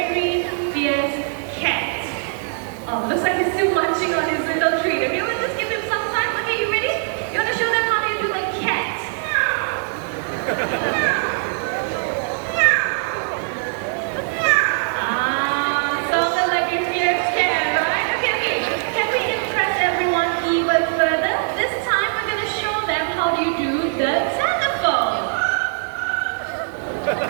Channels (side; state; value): left; silent; 65 dB below the other